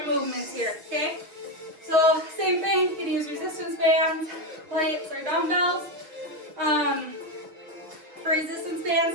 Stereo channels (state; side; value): late; left; 6.5 ms